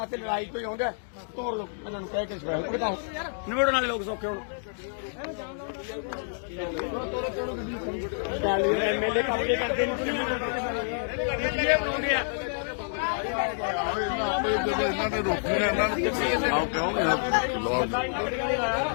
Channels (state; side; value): silent; right; digital silence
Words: ਤੇ ਲੜਾਈ ਕੋਈ ਆਉਂਦਾ ਤੋੜ ਲੋ ਇਹਨਾਂ ਨੂੰ ਕਹਿ ਕੇ ਸਪੈਸ਼ਲ ਉਹ ਬਤਾਓ ਨਿਬੜਨ ਵਾਲੇ ਲੋਕ ਸੌਖੇ ਹੁਣ ਐਮਐਲਏ ਕੰਮ ਕੇ ਕਰਦੇ ਜਦੋਂ ਇਹਨਾਂ ਨੇ ਰੋਕੀ ਨਾ ਇਹਨਾਂ ਨੂੰ ਆਓ ਕਹੋਗੇ ਆ